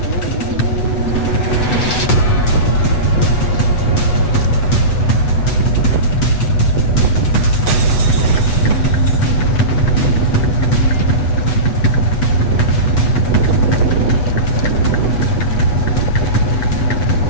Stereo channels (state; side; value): late; right; 8.1 ms